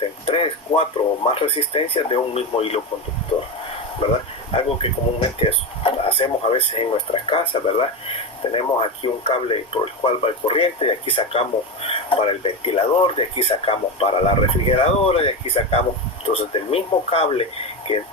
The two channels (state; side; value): normal; both; correlation 0.17